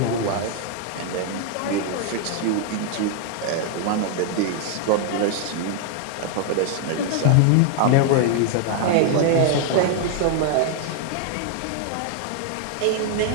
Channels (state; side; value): different; both; correlation 0.00